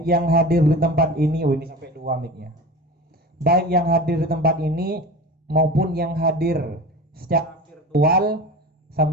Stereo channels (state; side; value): normal; both; correlation 0.33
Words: ini, oh ini sampai 2 mic-nya. Baik yang hadir di tempat ini maupun yang hadir secara virtual